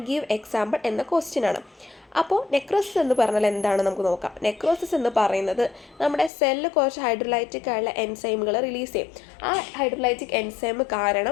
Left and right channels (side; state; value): right; drops out; at 6.3 s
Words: give example എന്ന ക്വസ്റ്റ്യൻ ആണ്. അപ്പോൾ നെക്രോസിസ് എന്ന് പറഞ്ഞാൽ എന്താണ് നമുക്ക് നോക്കാം. നെക്രോസിസ് എന്ന് പറയുന്നത് നമ്മുടെ സെല്ല് കുറച്ച് ഹൈഡ്രോലൈറ്റിക് ആയുള്ള എൻസൈമുകൾ റിലീസ് ചെയ്യും. ആ ഹൈഡ്രോലൈറ്റിക് എൻസൈം